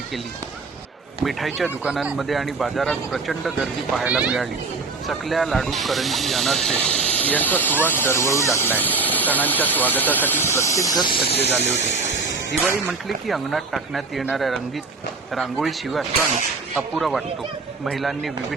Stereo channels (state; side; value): quieter; left; 4.1 dB